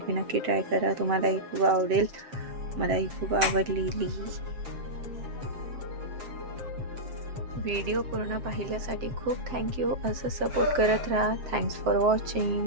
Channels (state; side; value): late; left; 7.7 ms